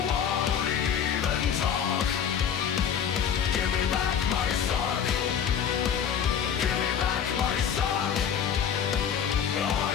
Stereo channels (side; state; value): right; quieter; 8.1 dB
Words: won't even talk. Give me back my sock. Give me back my sock. I